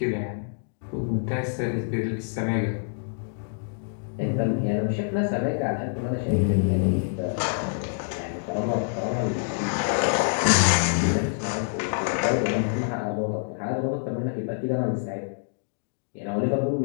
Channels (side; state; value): right; silent; digital silence